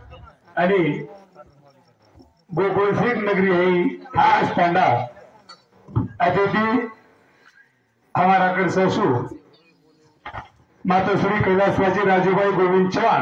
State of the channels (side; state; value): both; identical; correlation 1.00